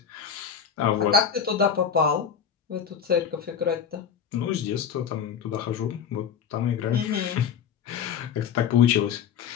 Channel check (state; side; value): quieter; right; 7.6 dB